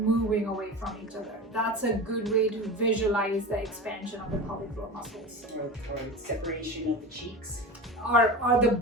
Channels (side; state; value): both; normal; correlation 0.29